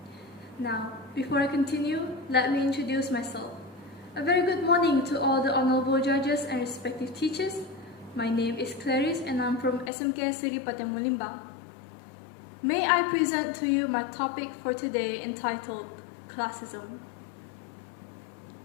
Now, before I continue, let me introduce myself. A very good morning to all the honorable judges and respective teachers. My name is CLARISE and I'm from SMK Seri Padang Malimbang. May I present to you my topic for today entitled Classism.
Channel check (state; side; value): drops out; right; at 9.9 s